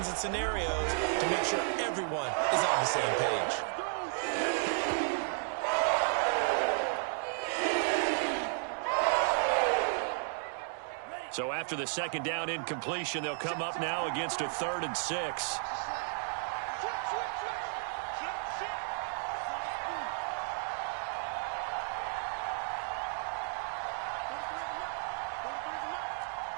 and scenarios to make sure everyone is on the same page. So after the 2nd down incompletion, they'll come up now against a 3rd and 6.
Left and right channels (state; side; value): silent; left; 55 dB below the other